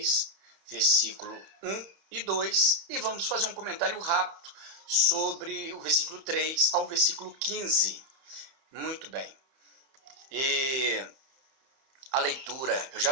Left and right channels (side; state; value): left; late; 31 ms